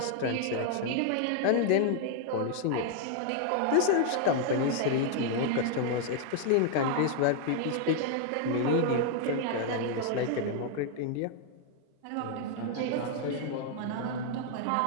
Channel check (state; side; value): different; both; correlation 0.00